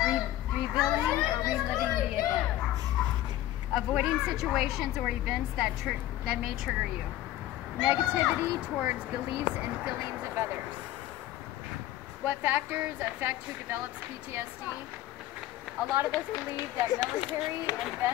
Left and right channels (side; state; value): right; quieter; 14.2 dB